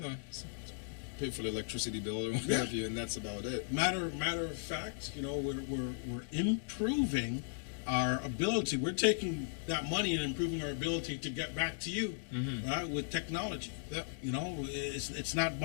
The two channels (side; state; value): right; silent; digital silence